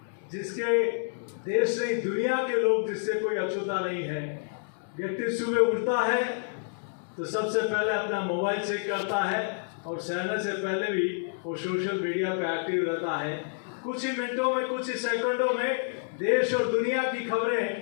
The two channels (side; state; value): right; silent; digital silence